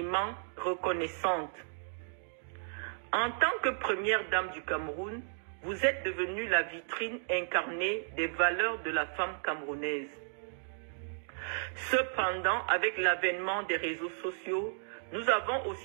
reconnaissantes. En tant que première dame du Cameroun, vous êtes devenue la vitrine incarnée des valeurs de la femme camerounaise. Cependant, avec l'avènement des réseaux sociaux, nous avons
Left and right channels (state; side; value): silent; left; digital silence